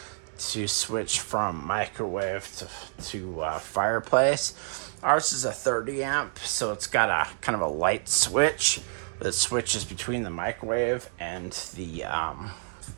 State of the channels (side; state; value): left; silent; digital silence